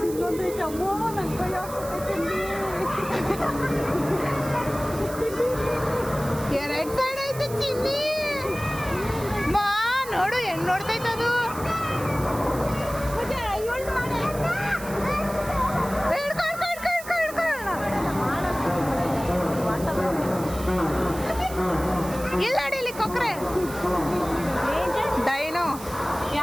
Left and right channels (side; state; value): right; noise; hiss, 14 dB below the sound